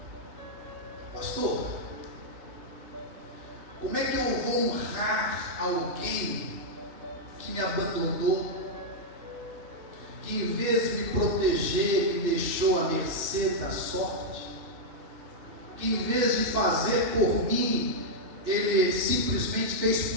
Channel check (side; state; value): left; late; 2.6 ms